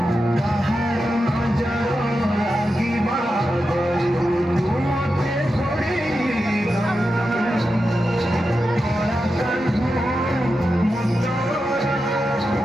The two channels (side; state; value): both; normal; correlation 0.89